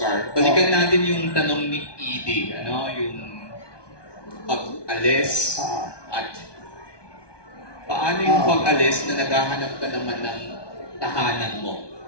balikan natin yung tanong ni Edie, ano, yung pag-alis at paano yung pag-alis na naghahanap ka naman ng tahanan mo?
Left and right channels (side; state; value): right; late; 1.2 ms